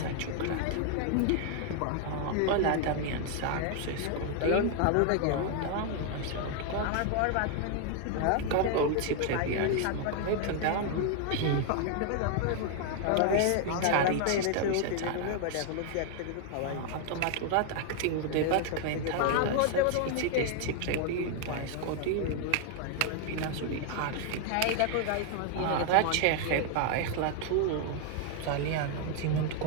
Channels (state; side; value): different; both; correlation 0.00